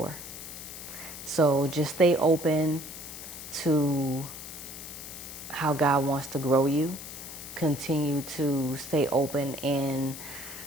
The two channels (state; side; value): noise; left; hiss, 11 dB below the sound